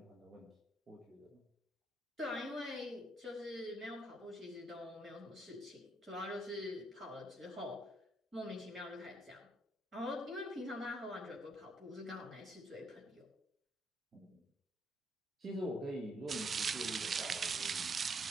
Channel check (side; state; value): both; normal; correlation 0.73